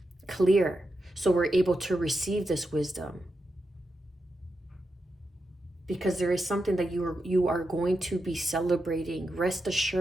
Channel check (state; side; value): normal; both; correlation 0.87